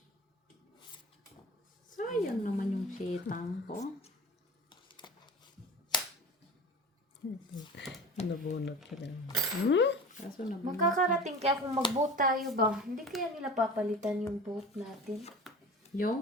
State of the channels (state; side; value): normal; both; correlation 0.36